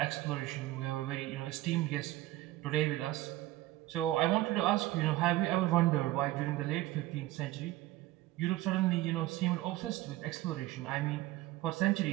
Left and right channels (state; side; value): quieter; left; 16.5 dB